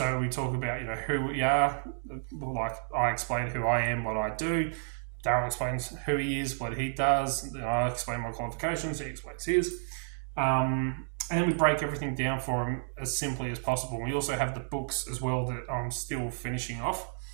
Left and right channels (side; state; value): left; silent; digital silence